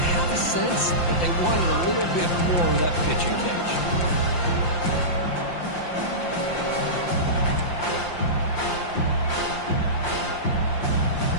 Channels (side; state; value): right; late; 5.8 ms